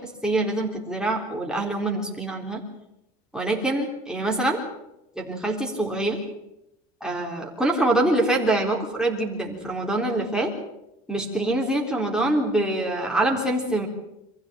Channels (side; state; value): both; normal; correlation 0.56